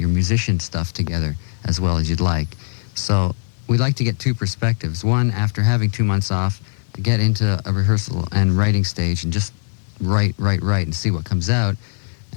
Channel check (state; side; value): silent; right; 66 dB below the other